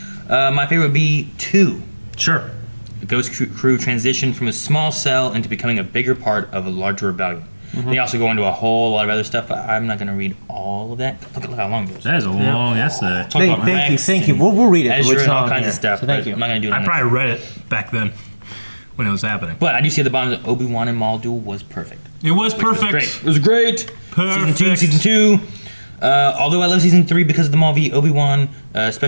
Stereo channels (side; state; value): both; inverted; correlation -1.00